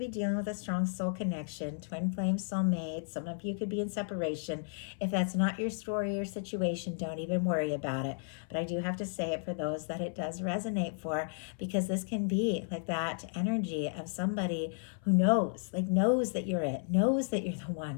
dealing with a strong soul connection, twin flame soulmate. Some of you could be in separation. If that's not your story or situation, don't even worry about it. But I do have to say it for those that it does resonate for, because this can be like that energy of somebody who knows that you're it, knows that you're the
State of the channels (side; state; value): right; silent; 56 dB below the other